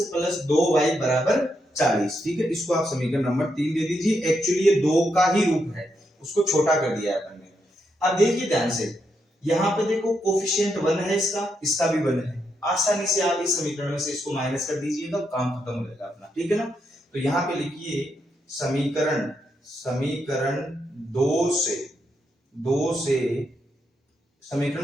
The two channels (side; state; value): both; normal; correlation 0.81